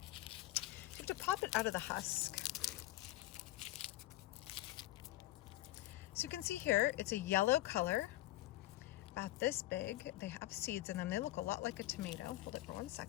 have to pop it out of the husk. So you can see here, it's a yellow color, about this big. They have seeds in them. They look a lot like a tomato. Hold it for 1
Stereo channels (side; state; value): right; quieter; 16.6 dB